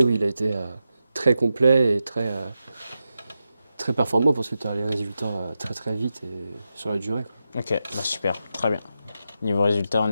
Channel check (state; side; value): inverted; both; correlation -0.89